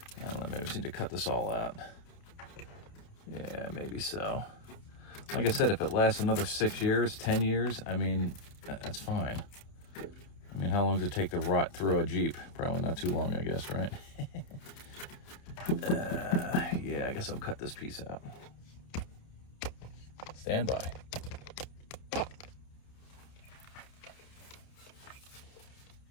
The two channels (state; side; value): late; right; 29 ms